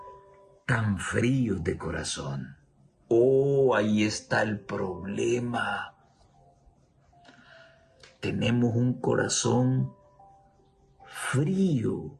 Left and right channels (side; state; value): both; identical; correlation 1.00